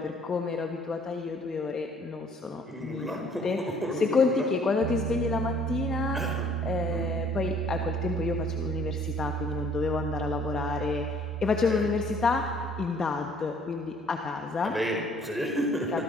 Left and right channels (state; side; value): normal; both; correlation 0.59